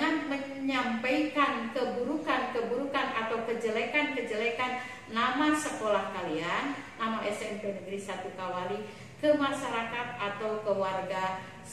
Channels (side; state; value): both; identical; correlation 1.00